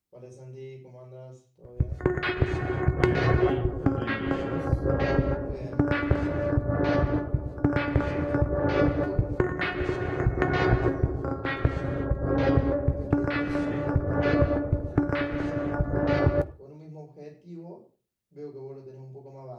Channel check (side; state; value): both; identical; correlation 1.00